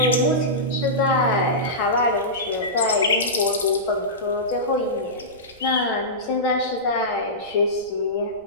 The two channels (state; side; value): noise; right; rumble, 28 dB below the sound